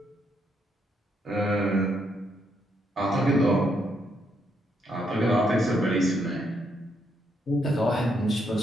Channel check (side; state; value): both; normal; correlation 0.76